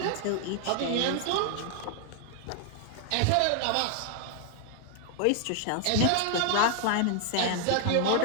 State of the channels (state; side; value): different; both; correlation 0.00